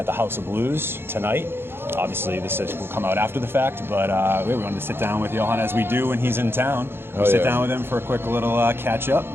the House of Blues tonight. Obviously, will come out after the fact, but we wanted to sit down with Johan as we do when he's in town. We'll sit down with him for a quick little catch up.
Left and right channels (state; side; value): late; left; 0.11 ms